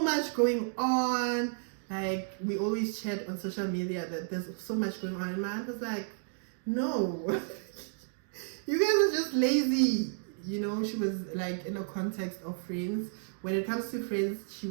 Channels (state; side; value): silent; left; digital silence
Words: much going on. Like, we always chat on social media that there's so much going on. And my aunt was like, no, you guys are just lazy. You know, she was like in a context of friends. When it comes to friends, she